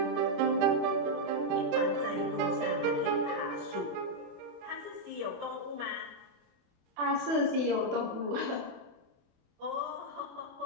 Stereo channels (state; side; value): late; left; 28 ms